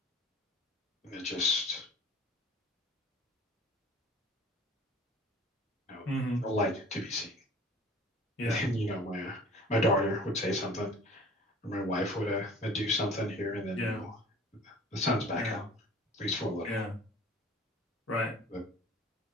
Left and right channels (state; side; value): normal; both; correlation 0.46